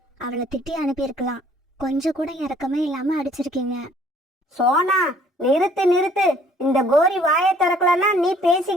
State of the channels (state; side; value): normal; both; correlation 0.58